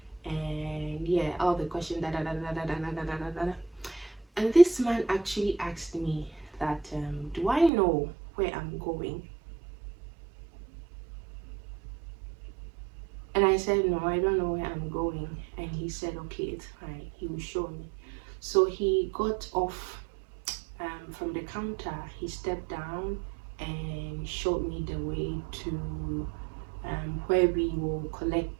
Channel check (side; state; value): left; drops out; at 7.7 s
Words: and yeah, all the questions. And this man actually asked me that, do I know where I'm going? And I said, no, I don't know where I'm going. And he said, okay, it's fine, he will show me. So he got off from the counter. He stepped down and showed me the way to where we will